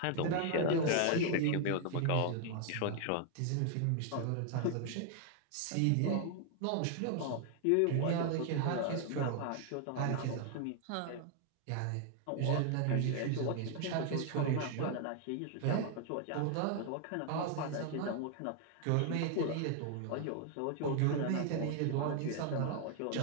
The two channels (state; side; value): different; both; correlation 0.00